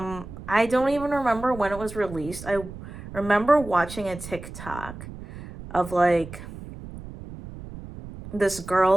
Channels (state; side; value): noise; right; rumble, 13 dB below the sound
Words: don't even remember when it was released. I remember watching a TikTok of like this